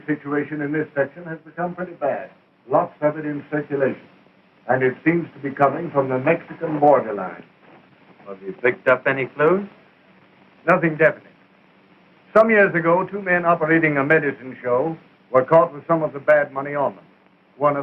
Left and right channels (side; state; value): both; identical; correlation 1.00